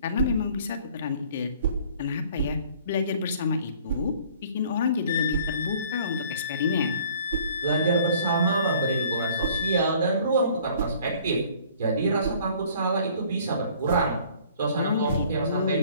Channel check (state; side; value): inverted; both; correlation -0.54